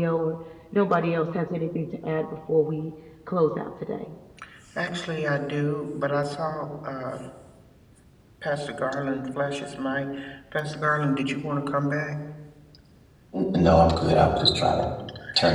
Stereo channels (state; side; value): identical; both; correlation 1.00